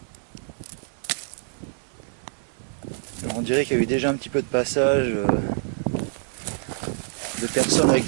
Alors, on dirait qu'il y a eu déjà un petit peu de passage de personnes avec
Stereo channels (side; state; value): left; silent; 58 dB below the other